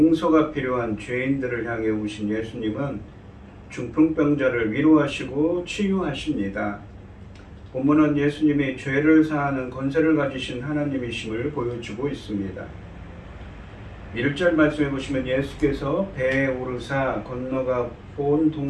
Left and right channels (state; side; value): identical; both; correlation 1.00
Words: 필요한 죄인들을 향해 오신 예수님은 중풍병자를 위로하시고 치유하십니다. 본문은 예수님이 죄를 사하는 권세를 가지신 하나님이심을 보여주고 있습니다. 1절 말씀해 보시면 예수께서 배에 오르사 건너가 본